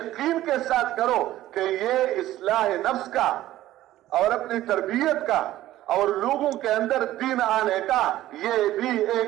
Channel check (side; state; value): left; quieter; 14.5 dB